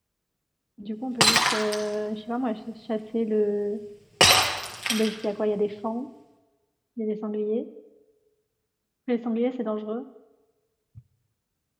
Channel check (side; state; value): both; identical; correlation 1.00